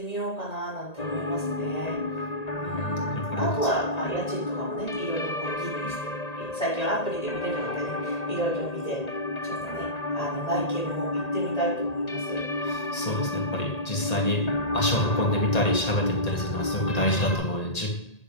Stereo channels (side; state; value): right; late; 1.8 ms